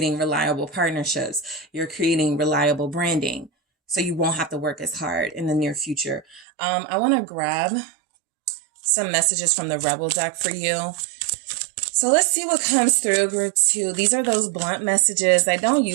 reliable partnerships. You're creating reliable branding. So you won't have to work as hard in the near future. I want to grab some messages from the Rebel deck for you. So let's see what comes through, group 2. These are those blunt messages. I don't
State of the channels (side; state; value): left; drops out; at 6.5 s